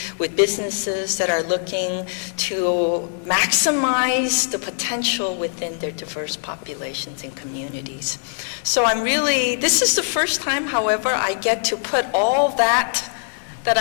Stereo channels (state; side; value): silent; right; digital silence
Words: with businesses that are looking to maximize the potential within their diverse populations and communities. So this is the first time, however, I get to put all that